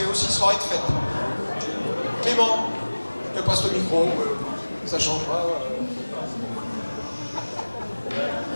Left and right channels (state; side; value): inverted; both; correlation -1.00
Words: aussi soirée de fête. Clément, je te passe le micro, ça changera.